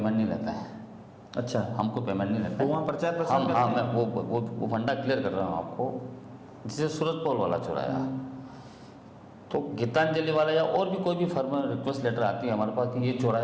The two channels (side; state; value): both; identical; correlation 1.00